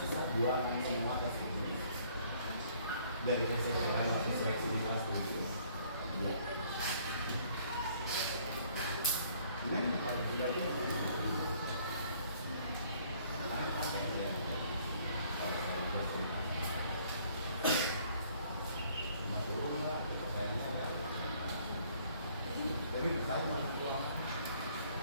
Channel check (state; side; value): inverted; both; correlation -0.61